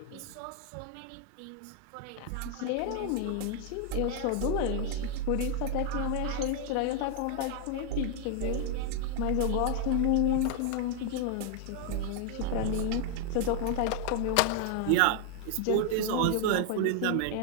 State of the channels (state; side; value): different; both; correlation 0.00